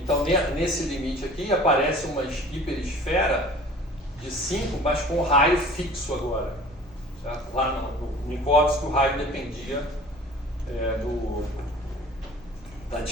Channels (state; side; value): noise; right; hum, 26 dB below the sound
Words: nesse limite aqui aparece uma hiperesfera de 5, mas com raio fixo agora. Certo? Lá no Minkowski o raio dependia da